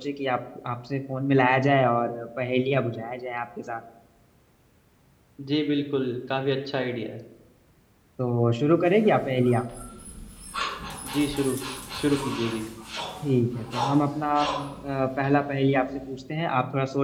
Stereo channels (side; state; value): both; identical; correlation 1.00